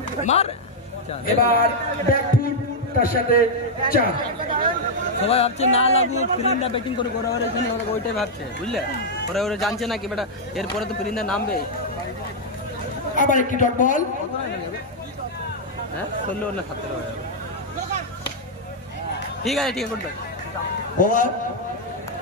মার এবার ব্যাক ফুট তার সাথে 4 সবাই ভাবছে না লাগুক ফিরিন্দা ব্যাটিং করে ওরা এখানে ওরা ওইটাই ভাবছে বুঝলে ওরা জানছে না কি বেটা এরপরে তো ফিরিন্দা নামবে আবার একটি ডট বল হ্যাঁ 16 না 17 হয়ে যাবে ঠিক আছে করতে ওভার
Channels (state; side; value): normal; both; correlation -0.03